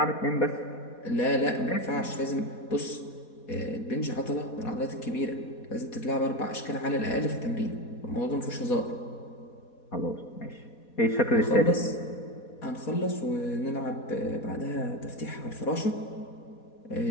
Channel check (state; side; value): late; right; 4.2 ms